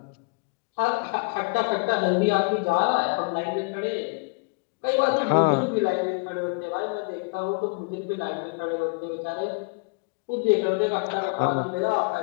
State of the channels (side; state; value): right; quieter; 31.1 dB